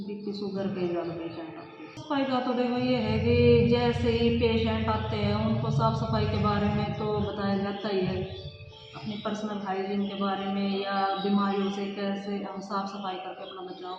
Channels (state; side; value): identical; both; correlation 1.00